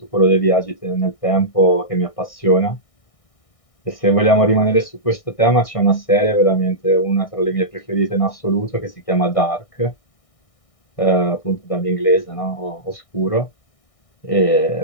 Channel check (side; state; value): right; late; 1.6 ms